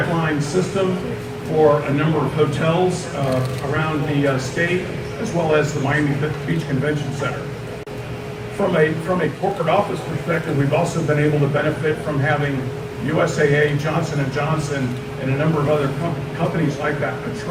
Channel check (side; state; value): both; identical; correlation 1.00